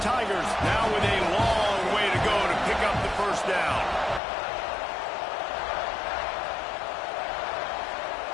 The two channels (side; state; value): right; drops out; at 4.2 s